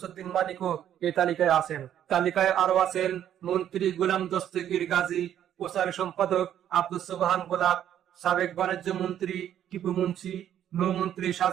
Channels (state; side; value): quieter; left; 10.5 dB